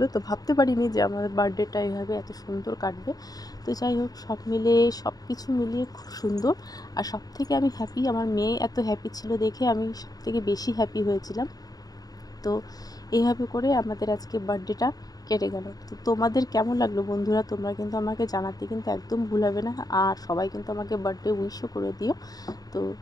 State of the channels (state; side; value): late; right; 0.18 ms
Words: তো ভাবতে পারিনি যে আমার বার্থডেটা এভাবে এত সুন্দর কাটবে। তো যাই হোক, সব কিছু মিলিয়ে খুব সুন্দর। আর সবথেকে আমি হ্যাপি, আমার মেয়ে এত হ্যাপি ছিল দেখে আমি সবথেকে বেশি হ্যাপি হয়েছিলাম। তো এইভাবে করে আমাদের আজকে বার্থডেটা কেটে গেল। তো তোমাদের কেমন লাগলো বন্ধুরা, তোমরা কিন্তু আমাকে জানাতে কিন্তু একদম ভুলাবে না। আর সবাই কিন্তু আমাকে বার্থডে উইশও করে দিও। তো